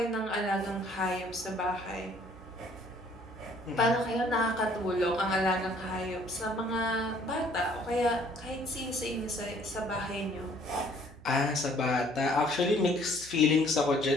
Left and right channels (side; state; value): right; noise; hum, 20 dB below the sound